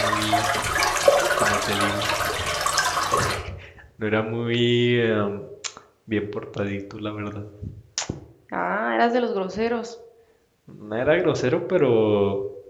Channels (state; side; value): identical; both; correlation 1.00